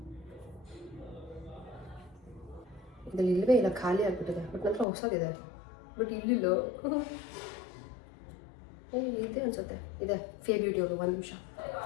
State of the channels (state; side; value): drops out; right; at 4.9 s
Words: ಇದ್ರಲ್ಲಿ ಇಲ್ಲವೇ ಇಲ್ಲ, ಖಾಲಿ ಆಗಿಬಿಟ್ಟಿದೆ. ಬಟ್ ನಂತರ ಹೊಸದಿದೆ, ಬಟ್ ಇಲ್ಲಿಲ್ಲ. ಇದೆ ಅನ್ಸುತ್ತೆ, ಇದೆ ಫೇ ಬ್ಯೂಟಿ ಅವರು. 1 ನಿಮಿಷ,